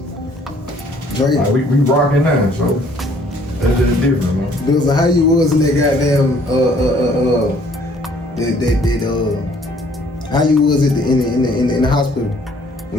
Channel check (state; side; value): normal; both; correlation 0.60